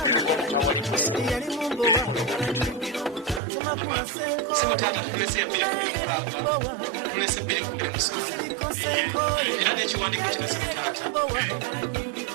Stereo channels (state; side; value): drops out; left; at 3.4 s